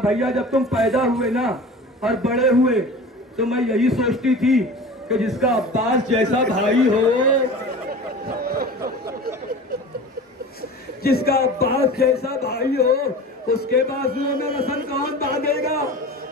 بھیا جب تم پیدا ہوئے نا اور بڑے ہوئے تو میں یہی سوچتی تھی کہ جس کا عباس جیسا بھائی ہو, جس کا عباس جیسا بھائی ہو اس کے بازوؤں میں رسن کون باندھے گا؟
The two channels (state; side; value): normal; both; correlation 0.37